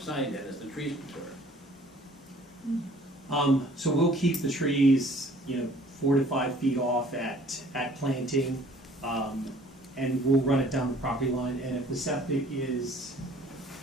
then as the trees mature. So we'll keep the trees, 4 to 5 feet off at planting, and we'll run it down the property line. And if the septic is,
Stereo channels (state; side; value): normal; both; correlation 0.54